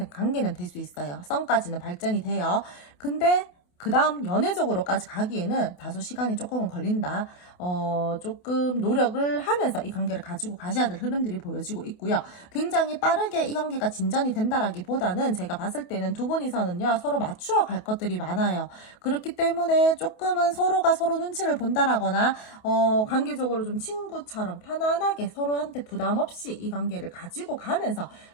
관계는 될 수 있어요. 썸까지는 발전이 돼요. 근데 그 다음 연애적으로까지 가기에는 다소 시간이 조금은 걸린다. 조금 노력을 하면서 이 관계를 가지고 가셔야 될 흐름들이 보여지고 있고요. 굉장히 빠르게 이 관계가 진전이 된다라기보다는 제가 봤을 때는 두 분이서는요, 서로 맞추어 갈 것들이 많아요. 그렇기 때문에 조금은 서로가 서로 눈치를 본다라거나, 관계적으로 좀 친구처럼 편안하게 서로한테 부담 없이 이 관계를 가지고 가면서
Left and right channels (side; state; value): right; late; 28 ms